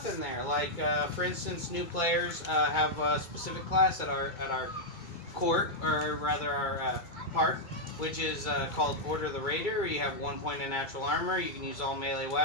in there. Like for instance, new players have a specific class at our court, or rather our park, which is called Order the Raider. You have 1 point in natural armor. You can use all melee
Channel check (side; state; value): right; late; 2.2 ms